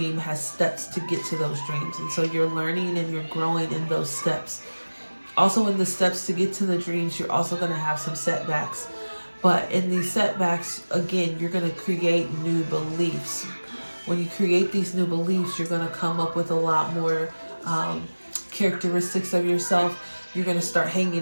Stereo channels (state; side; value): inverted; both; correlation -1.00